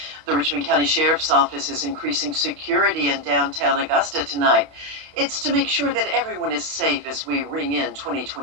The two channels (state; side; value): late; left; 31 ms